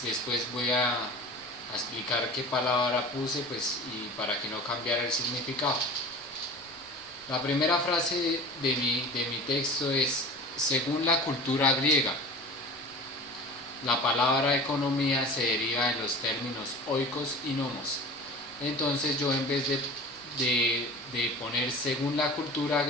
después voy a explicar qué palabra puse, pues, y para que no cambiara el significado. La primera frase de mi texto es: según la cultura griega, la palabra economía se deriva de los términos oikos y nomos. Entonces yo, en vez de poner según la cultura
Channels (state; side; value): normal; both; correlation 0.37